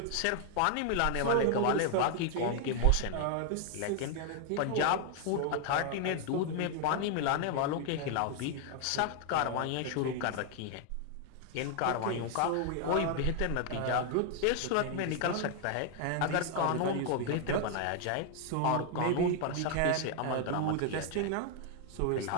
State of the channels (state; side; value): different; both; correlation 0.00